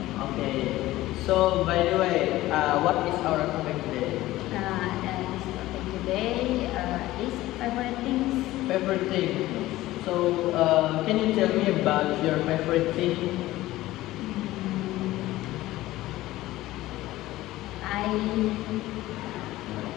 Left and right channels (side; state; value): right; quieter; 16.7 dB